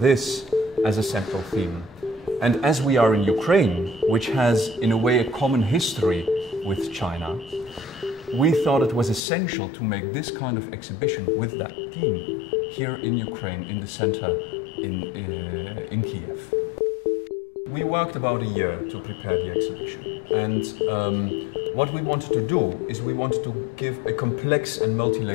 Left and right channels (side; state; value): right; drops out; at 9.2 s